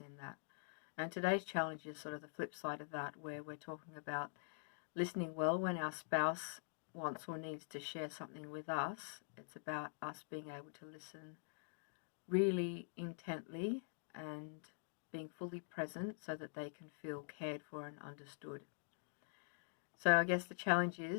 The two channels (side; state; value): right; silent; digital silence